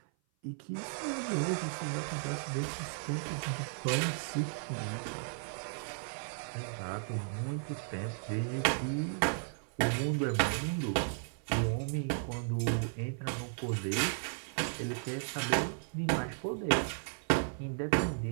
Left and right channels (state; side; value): silent; left; 54 dB below the other